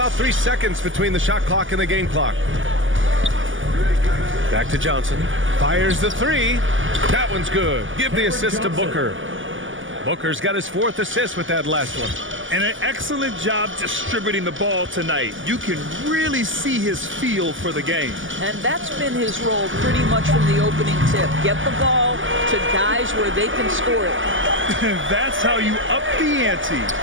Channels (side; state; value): left; late; 0.57 ms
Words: 3 seconds between the shot clock and the game clock. Back to Johnson. Fires the 3. That one's good. Give the assist to Booker. Booker's got his 4th assist with that last one. And an excellent job distributing the ball tonight. You can really see his feel for the game. And that's been his role pretty much from the opening tip. Get the ball to guys where they can score it. That's how you up the ante.